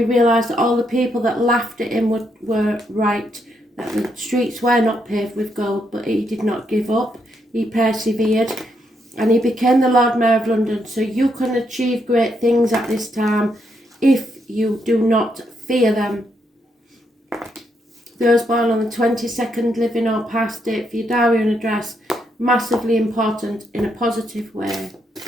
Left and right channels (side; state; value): both; normal; correlation 0.78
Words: realised that all the people that laughed at him were right, that the streets were not paved with gold, but he did not give up. He persevered, and he became the Lord Mayor of London. So you can achieve great things at this time if you do not fear them. Those born on the 22nd, living or past, date for your diary and address. massively important in a positive way.